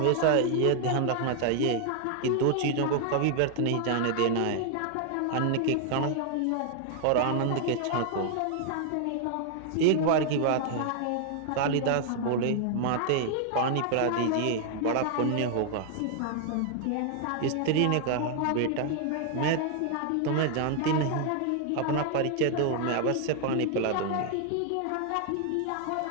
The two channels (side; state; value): both; different; correlation 0.00